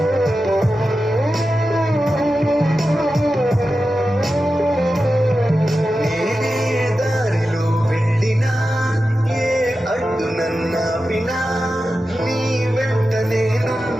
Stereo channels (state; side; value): normal; both; correlation 0.92